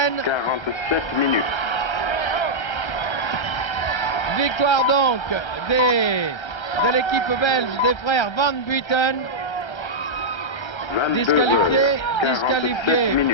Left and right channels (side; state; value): right; late; 1.3 ms